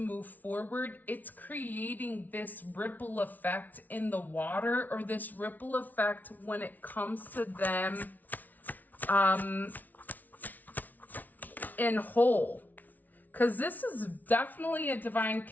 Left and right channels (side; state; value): right; late; 0.079 ms